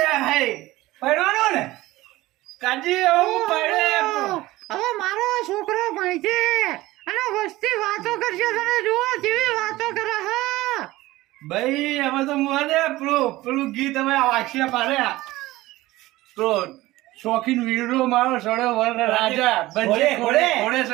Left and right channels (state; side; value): quieter; left; 18.0 dB